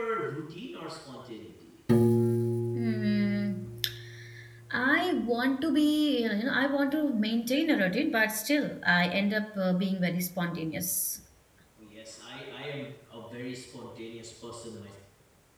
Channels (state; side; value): identical; both; correlation 1.00